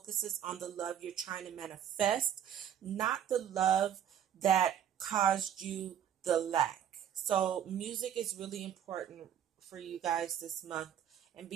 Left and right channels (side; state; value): left; quieter; 9.7 dB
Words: on the love you're trying to manifest, not the love that caused you the lack. So music is really important for you guys this month, and